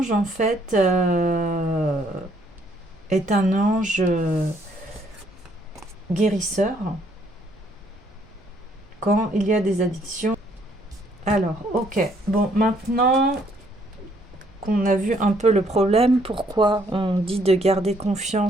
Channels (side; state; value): both; normal; correlation 0.67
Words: en fait, est un ange guérisseur quand il y a des addictions. Alors, ok. Bon, maintenant qu'on a vu un peu le problème, pourquoi on dit de garder